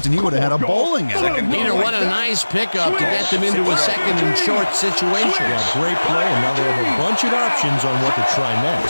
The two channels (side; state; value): both; inverted; correlation -1.00